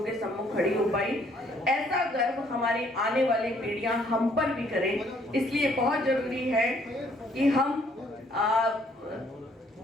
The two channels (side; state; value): both; normal; correlation 0.65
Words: के सम्मुख खड़ी हो पाई। ऐसा गर्व हमारी आने वाली पीढ़ियां हम पर भी करें। इसलिए बहुत जरूरी है कि हम